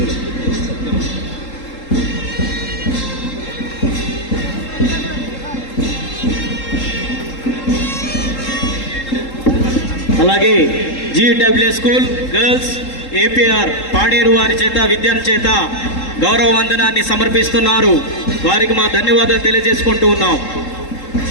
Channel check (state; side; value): late; right; 3.8 ms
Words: అలాగే GW school girls APR Paderu వారి చేత విద్యార్థి చేత గౌరవ వందనాన్ని సమర్పిస్తున్నారు. వారికి మా ధన్యవాదాలు తెలియజేసుకుంటూ ఉన్నాం.